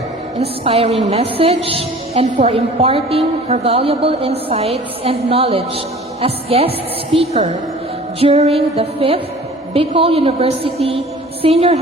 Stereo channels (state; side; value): normal; both; correlation 0.45